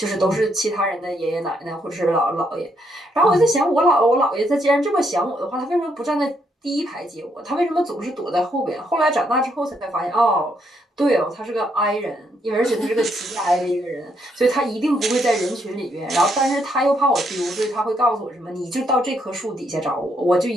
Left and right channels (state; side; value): normal; both; correlation 0.75